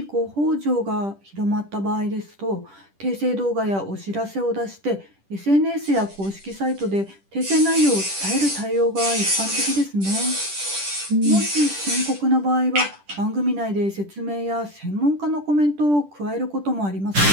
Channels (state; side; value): late; left; 10 ms